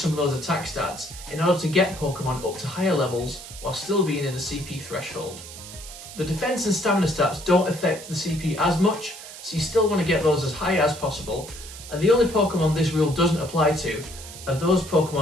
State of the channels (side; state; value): right; noise; hiss, 14 dB below the sound